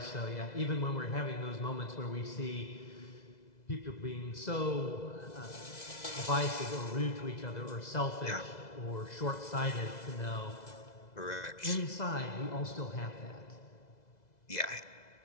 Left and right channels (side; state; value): right; late; 2.0 ms